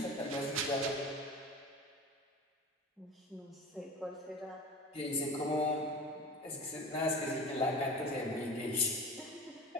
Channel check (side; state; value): both; normal; correlation 0.35